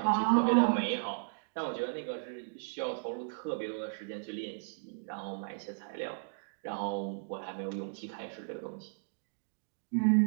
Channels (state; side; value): silent; left; digital silence